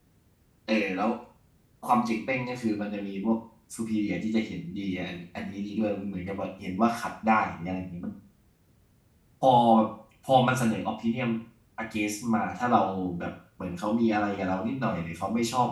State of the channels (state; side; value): identical; both; correlation 1.00